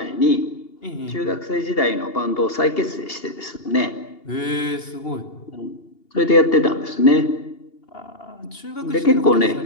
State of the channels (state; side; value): late; right; 2.8 ms